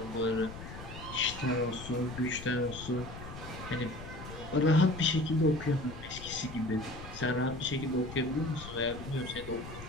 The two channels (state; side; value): noise; left; rumble, 12 dB below the sound